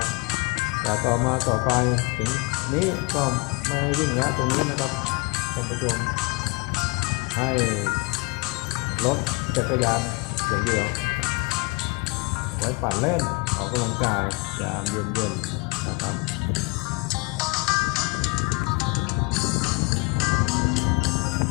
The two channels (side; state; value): right; quieter; 27.1 dB